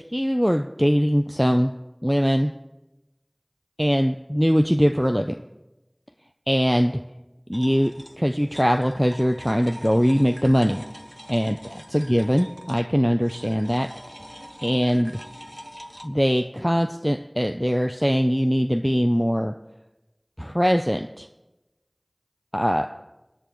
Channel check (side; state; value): both; identical; correlation 1.00